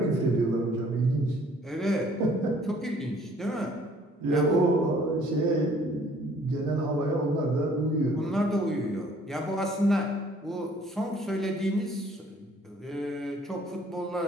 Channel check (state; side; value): normal; both; correlation 0.58